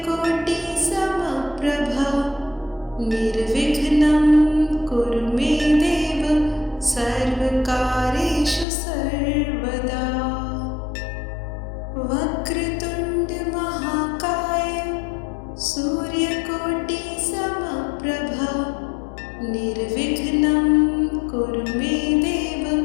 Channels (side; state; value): right; drops out; at 8.7 s